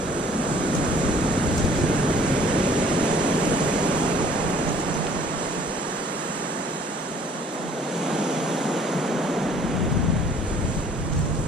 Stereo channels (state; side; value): normal; both; correlation 0.56